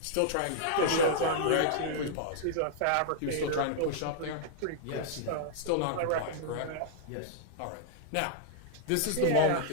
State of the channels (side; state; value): both; different; correlation -0.01